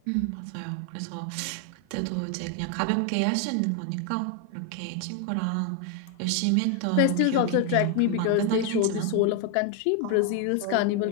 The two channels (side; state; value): both; different; correlation 0.01